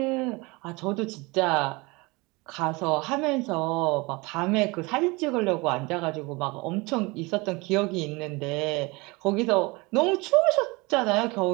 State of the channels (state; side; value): quieter; left; 25.3 dB